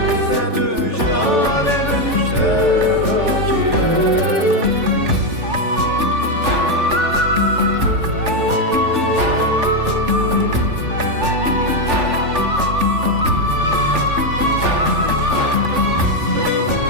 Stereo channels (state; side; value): late; left; 3.4 ms